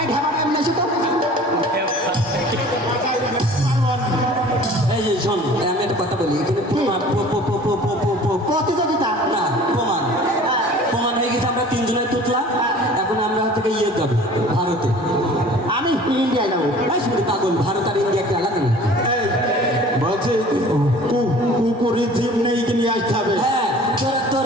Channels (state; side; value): normal; both; correlation 0.46